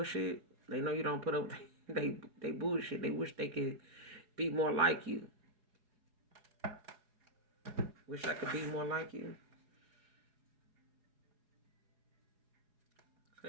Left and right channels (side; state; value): left; late; 4.8 ms